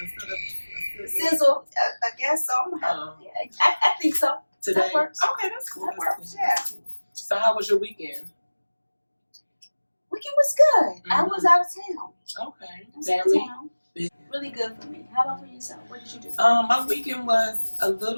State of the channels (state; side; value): inverted; both; correlation -1.00